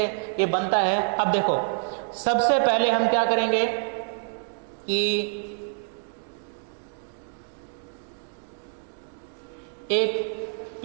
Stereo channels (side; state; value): left; silent; digital silence